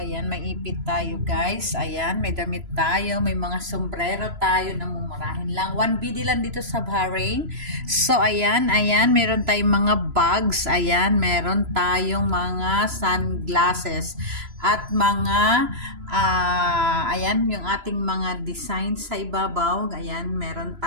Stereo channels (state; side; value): late; left; 3.0 ms